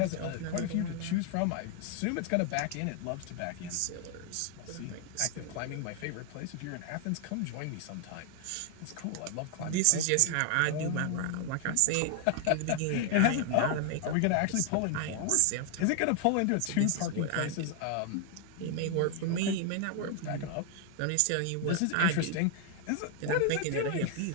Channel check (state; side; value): different; both; correlation 0.00